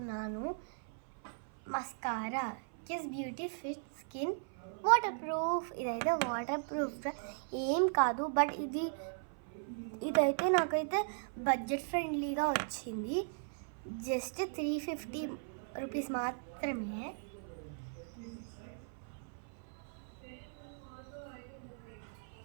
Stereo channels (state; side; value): silent; left; 53 dB below the other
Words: Mascara kiss beauty fit skin water proof. ఇదైతే వాటర్ ప్రూఫ్ ఏం కాదు, బట్ ఇదైతే నాకైతే బడ్జెట్ ఫ్రెండ్లీగా వచ్చింది. జస్ట్ 350 రూపీస్ మాత్రమే.